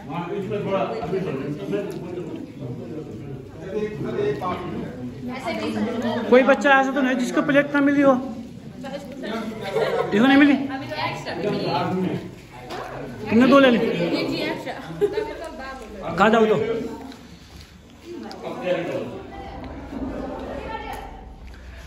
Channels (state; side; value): identical; both; correlation 1.00